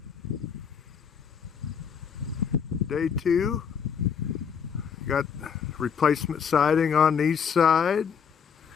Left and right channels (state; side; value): quieter; right; 7.0 dB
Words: Day 2. Got replacement siding on the east side.